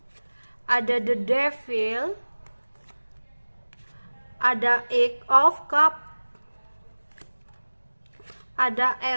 ada The Devil, ada Eight of Cup, ada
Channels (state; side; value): inverted; both; correlation -1.00